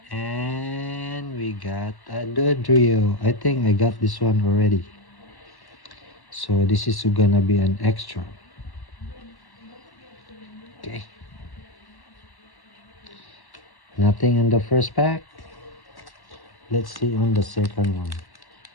And we got a Dodrio. I think I got this one already. So this is gonna be an extra. Okay. Nothing in the first pack. Let's see on the second one.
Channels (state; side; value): late; right; 1.1 ms